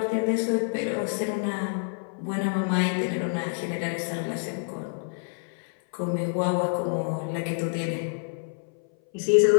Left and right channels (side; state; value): right; silent; 57 dB below the other